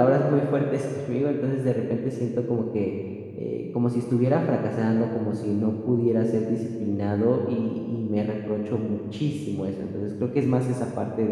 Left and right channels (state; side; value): identical; both; correlation 1.00